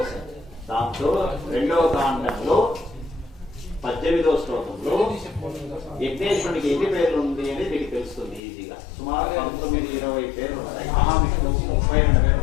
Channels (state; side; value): drops out; right; at 8.4 s